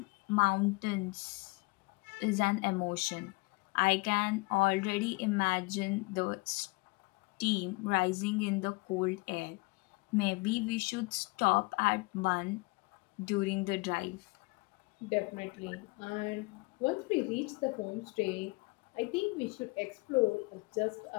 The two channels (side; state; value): right; quieter; 25.9 dB